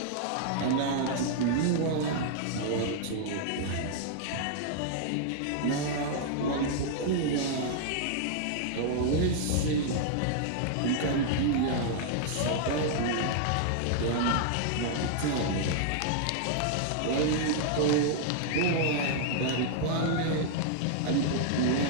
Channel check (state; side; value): different; both; correlation -0.01